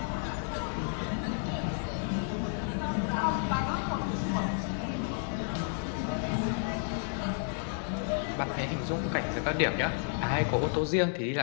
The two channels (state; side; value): silent; right; 57 dB below the other